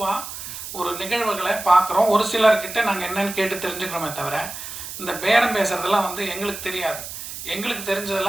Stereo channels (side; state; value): right; noise; hiss, 9 dB below the sound